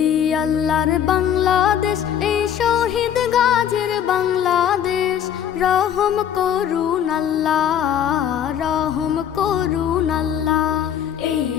আল্লাহর বাংলাদেশ, এই শহীদ গাজীর বাংলাদেশ। রহম করুন আল্লাহ, রহম করুন আল্লাহ। এই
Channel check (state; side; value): quieter; right; 9.4 dB